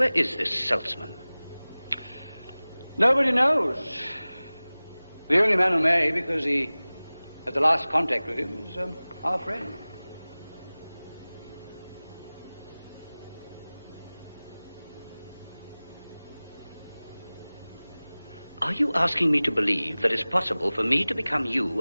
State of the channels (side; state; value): both; inverted; correlation -0.99